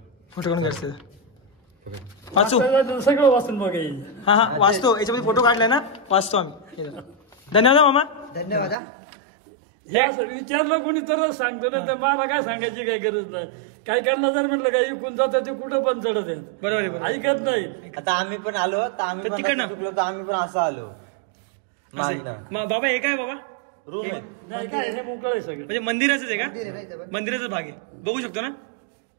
फोटो काढून घ्यायचं वाचू. सगळं वाचून बघायचं. हा हा वाचतो. याच्यामध्ये फोटो काढलाय ना, वाचतो आम्ही. धन्यवाद मामा. धन्यवाद. विचारलं कोणी तरच सांगतो ना, तर मला काय सांगायची काही गरज नाही. काय करणार जर म्हटलं काय इकून जातं ते कुठं पण चढत आहेत. बरोबर आहे, बरोबर. ऐकत नाही. आता आम्ही पण आलो तर आम्ही तर पण तिकडनं? असं चुकलो तर आम्ही पण असं आलो. असं आहे. बाबा हे काय बाबा? रूम आहे. नाही काय हे मोकळं आहे सगळं. म्हणजे मंदिराचंच आहे का? मंदिराचाच भाग आहे, बघू शकतो ना.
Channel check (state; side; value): drops out; left; at 8.8 s